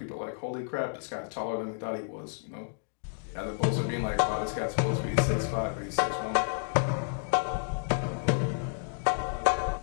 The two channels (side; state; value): right; silent; digital silence